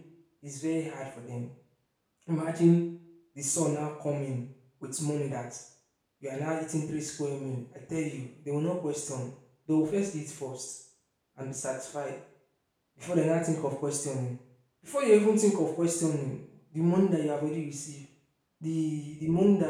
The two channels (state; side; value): identical; both; correlation 1.00